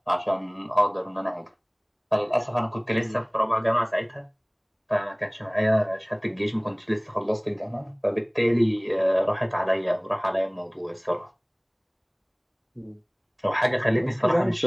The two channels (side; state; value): both; identical; correlation 1.00